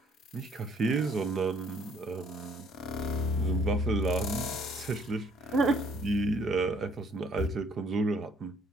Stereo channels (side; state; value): both; normal; correlation 0.62